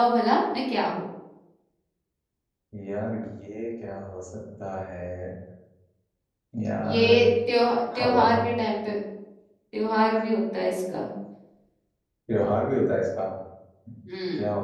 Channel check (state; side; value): identical; both; correlation 1.00